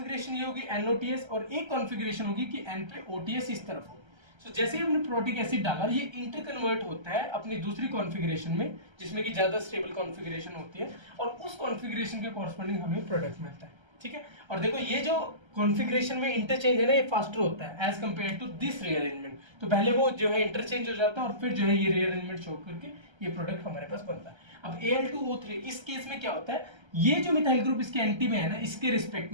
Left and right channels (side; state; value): left; late; 1.3 ms